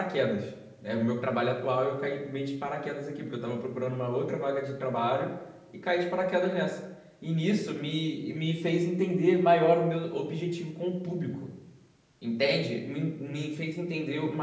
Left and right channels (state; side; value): identical; both; correlation 1.00